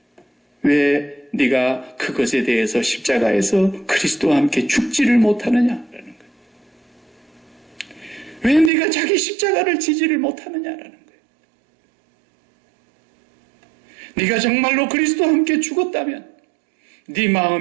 왜 네가 그것에 대해서 십자가에서 그리스도와 함께 죽지를 못하느냐라는 거예요. 왜 네가 자기 십자가를 지지를 못하느냐라는 거예요. 네가 정말로 그리스도와 함께 죽었다면 네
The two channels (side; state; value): left; drops out; at 8.7 s